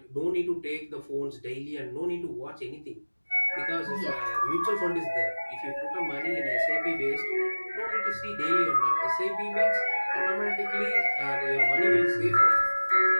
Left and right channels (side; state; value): both; inverted; correlation -1.00